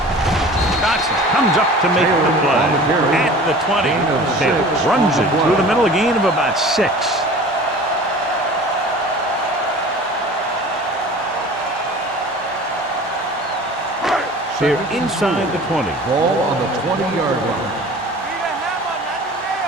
Johnson comes up to make the play. At the 20. Taylor runs it through the middle, a gain of about 6. They're inside the 20. Ball on the 20-yard line.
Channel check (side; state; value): both; normal; correlation 0.42